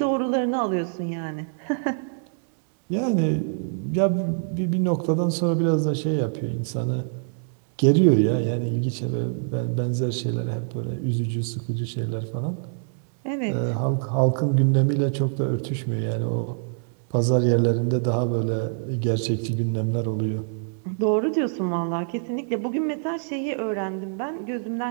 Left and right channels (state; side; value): silent; left; 62 dB below the other